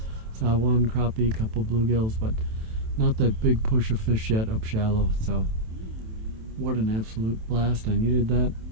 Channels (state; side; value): late; left; 27 ms